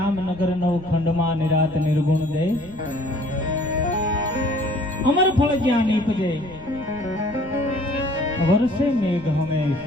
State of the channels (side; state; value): right; noise; rumble, 20 dB below the sound